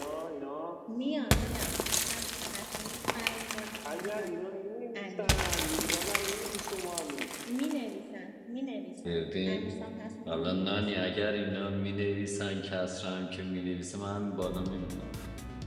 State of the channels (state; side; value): identical; both; correlation 1.00